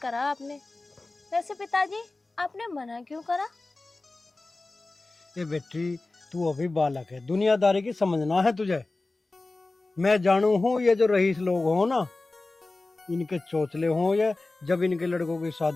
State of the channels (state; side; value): quieter; right; 3.2 dB